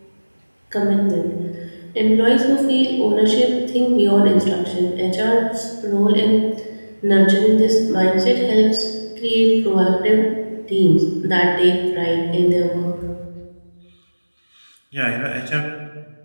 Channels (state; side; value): inverted; both; correlation -1.00